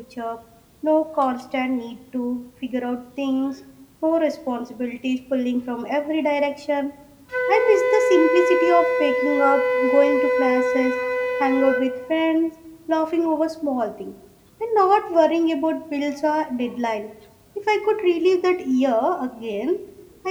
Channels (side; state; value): both; identical; correlation 1.00